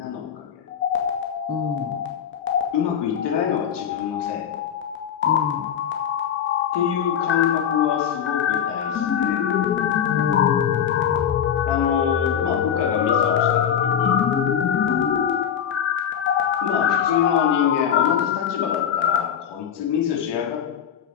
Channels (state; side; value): quieter; right; 8.6 dB